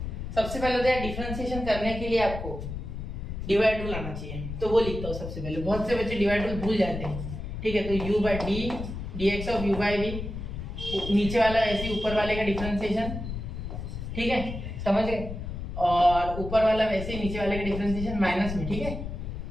सबसे पहले तो डिफरेंशिएशन करने के लिए आपको डिवाइड रूल आना चाहिए, तो वो लिखता हूँ सबसे पहले। बहुत से बच्चे डिवाइड रूल भूल जाते हैं। ठीक है, तो u by d dx of u by v, नीचे वाला ऐसे ऊपर वाले का डिफरेंशिएशन, ठीक है समझ गए, और ऊपर वाला वैसे ही नीचे वाले का डिफरेंशिएशन माइनस में। ठीक है,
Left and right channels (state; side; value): noise; left; rumble, 7 dB below the sound